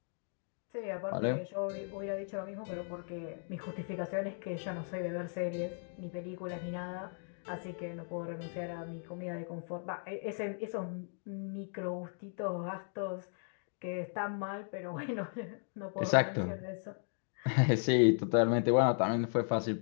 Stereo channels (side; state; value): right; silent; 54 dB below the other